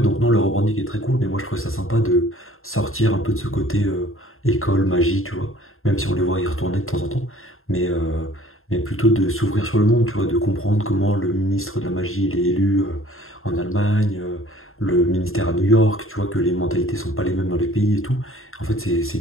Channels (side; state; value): right; late; 0.61 ms